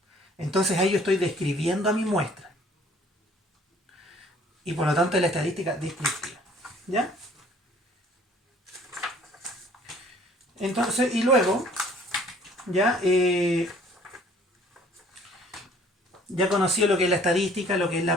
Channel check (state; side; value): normal; both; correlation 0.56